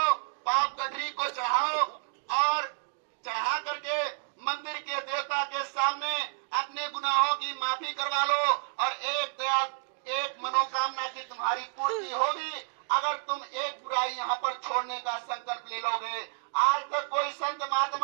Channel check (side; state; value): left; silent; digital silence